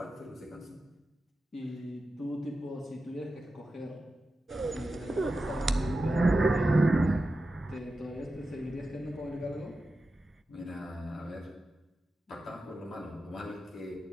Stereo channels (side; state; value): both; normal; correlation 0.92